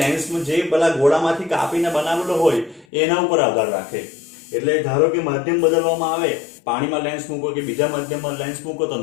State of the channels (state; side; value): drops out; right; at 2.9 s